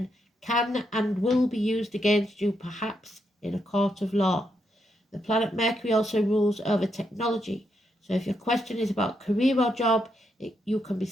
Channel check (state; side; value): normal; both; correlation 0.80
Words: can and will be used against you, perhaps in a court of law. The planet Mercury also rules over technology. So if your question is about career or job, you can be